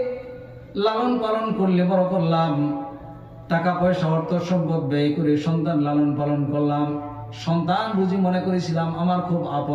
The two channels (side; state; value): both; identical; correlation 1.00